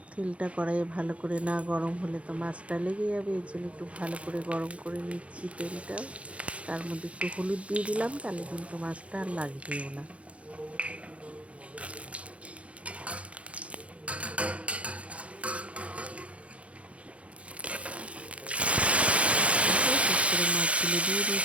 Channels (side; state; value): left; late; 0.063 ms